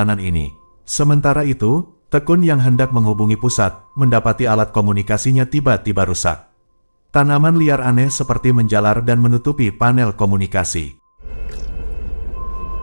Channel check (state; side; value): inverted; both; correlation -1.00